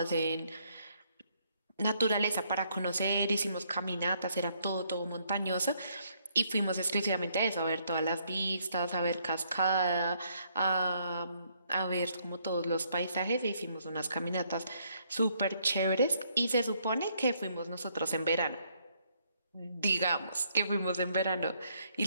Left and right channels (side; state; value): both; inverted; correlation -0.70